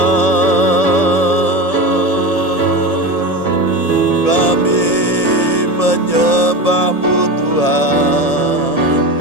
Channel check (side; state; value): right; late; 1.8 ms